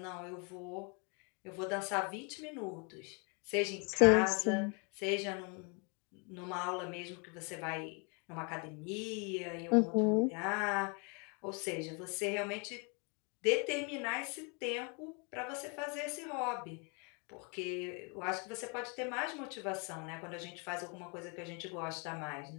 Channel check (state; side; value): quieter; right; 34.6 dB